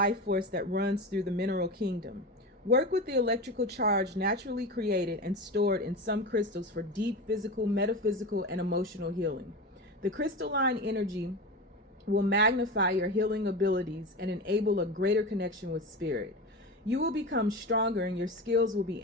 force that runs through the mineral kingdom. Work with the electrical charge naturally created and stored in some crystals for deep physical, metaphysical, and emotional healing. The crystalline energy will magnify your healing abilities and enable a greater connection with spirit. You will become stronger and your skills will be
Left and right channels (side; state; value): both; normal; correlation 0.25